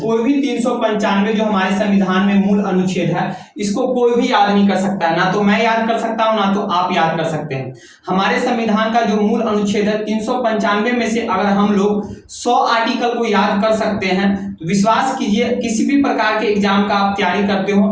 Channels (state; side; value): identical; both; correlation 1.00